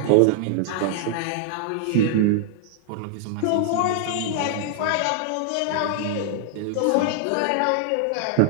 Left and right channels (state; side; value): different; both; correlation -0.01